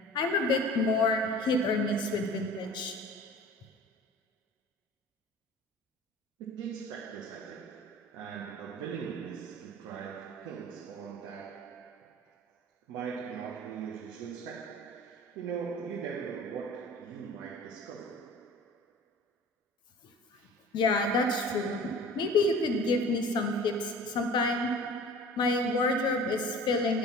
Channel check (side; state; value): both; normal; correlation 0.42